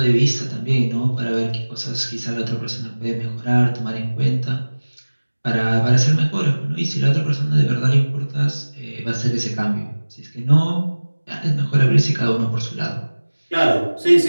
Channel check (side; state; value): both; inverted; correlation -1.00